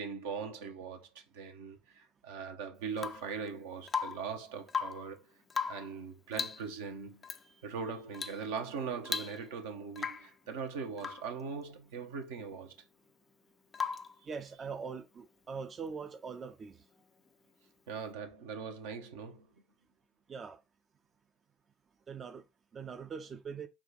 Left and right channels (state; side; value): normal; both; correlation 0.37